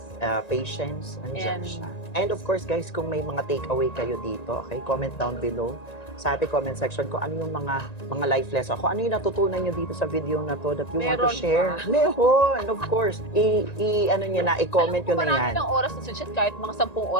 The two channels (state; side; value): late; right; 1.9 ms